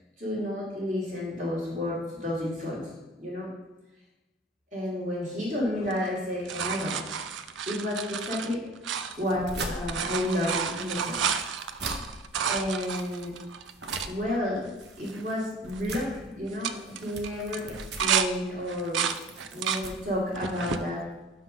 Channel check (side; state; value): both; normal; correlation 0.43